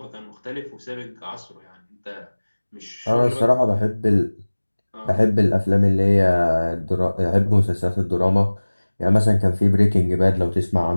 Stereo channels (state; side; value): inverted; both; correlation -1.00